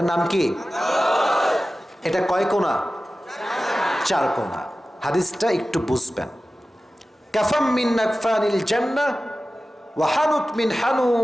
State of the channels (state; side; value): normal; both; correlation 0.95